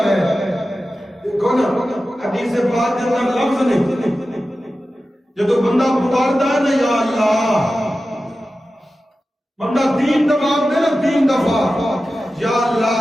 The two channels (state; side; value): normal; both; correlation 0.94